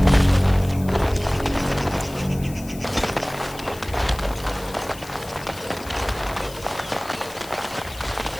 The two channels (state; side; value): noise; left; hiss, 17 dB below the sound